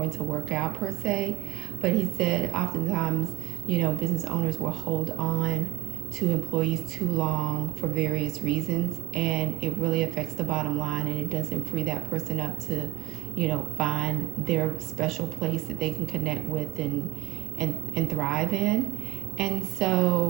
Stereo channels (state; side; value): quieter; left; 19.1 dB